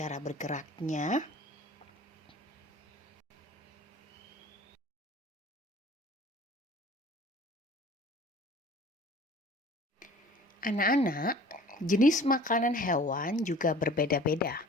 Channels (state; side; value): normal; both; correlation 0.47